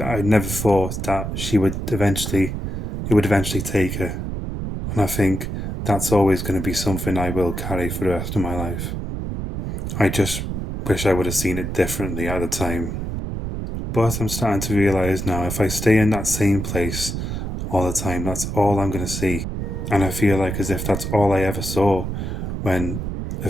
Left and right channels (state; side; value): noise; right; rumble, 4 dB below the sound